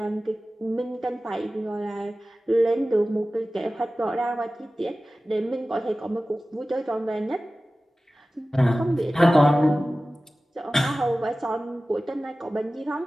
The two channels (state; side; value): normal; both; correlation 0.96